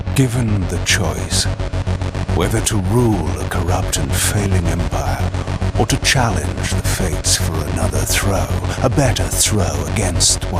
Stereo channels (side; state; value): both; identical; correlation 1.00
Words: Given the choice, whether to rule a corrupt and failing empire, or to challenge the fates for another throw, a better throw against